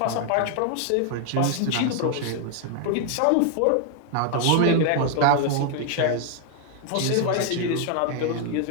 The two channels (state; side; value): different; both; correlation 0.00